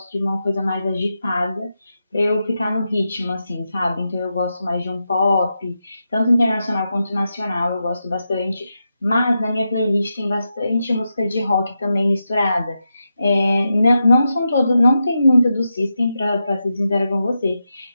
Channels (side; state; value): both; inverted; correlation -0.88